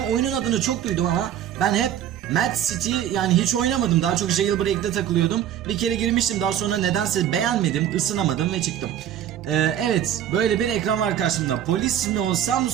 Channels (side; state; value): left; quieter; 10.5 dB